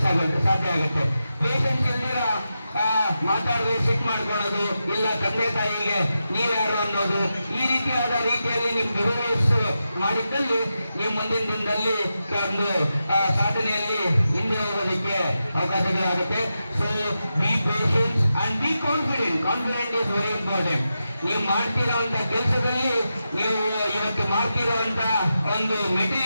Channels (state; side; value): inverted; both; correlation -0.89